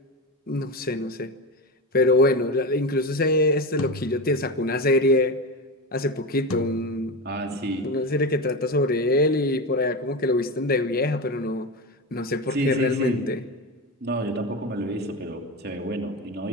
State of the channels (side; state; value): both; normal; correlation 0.20